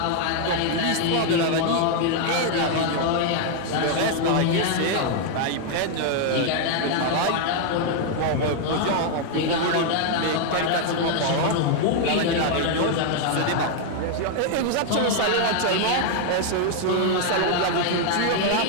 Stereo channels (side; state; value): both; different; correlation 0.00